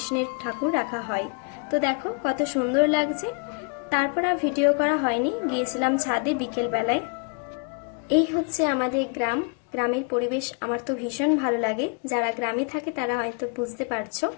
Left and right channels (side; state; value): right; quieter; 38.0 dB